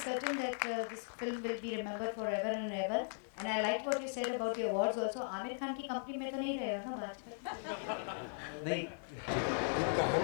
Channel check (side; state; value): right; silent; 52 dB below the other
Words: certain that this film will be remembered forever and ever. And I liked what you said about the awards also. Aamir Khan की company में तो नहीं रहे हो ना बात? नहीं, ये